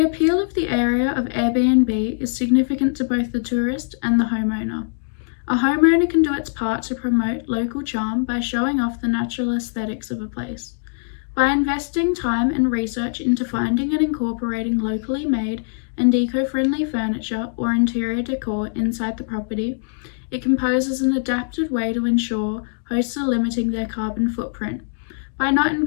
appeal of the area of Airbnb is significant to both the tourist and the homeowner. A homeowner can do its part to promote local charm by showing off the natural aesthetics of a place. By investing time and research into finding and incorporating locally made and eco-friendly furniture or interior decor inside the property, it composes an adapted way to ensure hosts are limiting their carbon footprint by not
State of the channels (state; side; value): silent; right; digital silence